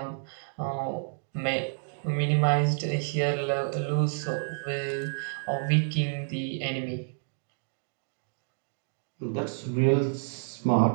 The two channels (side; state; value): left; silent; digital silence